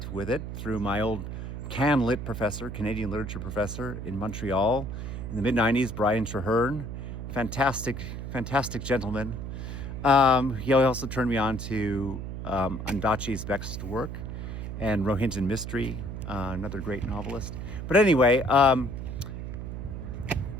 with it through my old CanLit professor, Canadian literature professor in Montreal in the mid-90s, Brian Trehearne. Fantastic gentleman. He also turned me on to Ondaatje's Vexed Work and Rohinton Mystery, another great novelist. But anyway,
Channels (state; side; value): noise; right; hum, 6 dB below the sound